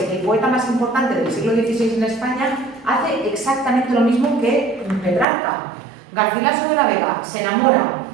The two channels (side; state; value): left; drops out; at 5.2 s